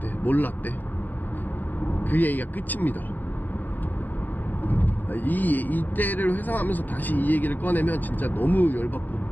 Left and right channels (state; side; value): late; right; 0.088 ms